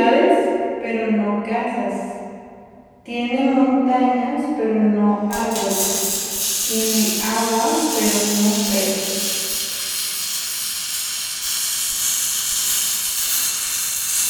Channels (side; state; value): both; identical; correlation 1.00